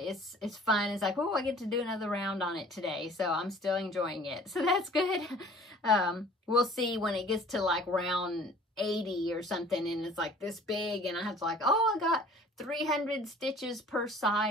It's fun. It's like, oh, I get to do another round on it today, so I'm still enjoying it. So that's good. We'll see when it gets to like round 80 or something, and it's like this big, and I have to like, oh, I got 300 stitches per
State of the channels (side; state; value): both; normal; correlation 0.49